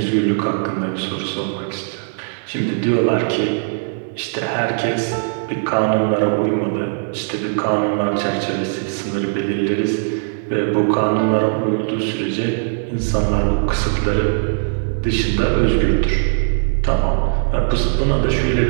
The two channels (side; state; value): left; silent; digital silence